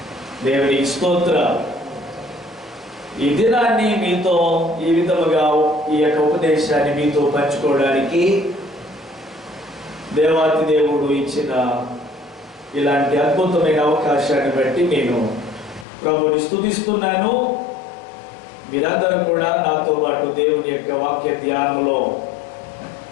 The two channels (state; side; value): drops out; right; at 15.9 s